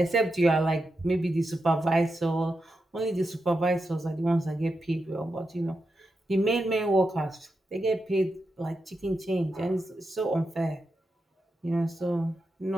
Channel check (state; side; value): normal; both; correlation 0.87